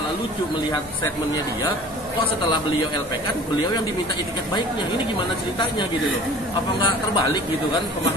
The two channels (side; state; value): both; normal; correlation 0.45